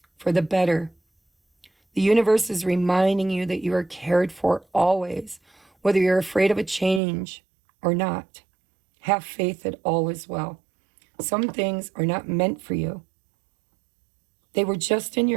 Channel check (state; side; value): drops out; left; at 7.0 s